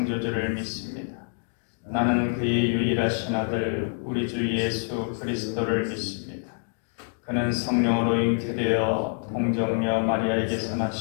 믿습니다. 나는 그의 유일하신 아들 우리 주 예수 그리스도를 믿습니다. 그는 성령으로 잉태되어 동정녀 마리아에게서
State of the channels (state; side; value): silent; right; 56 dB below the other